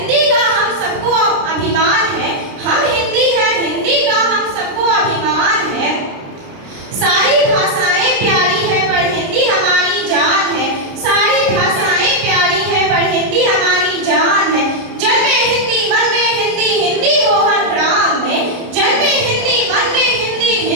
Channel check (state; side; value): late; left; 29 ms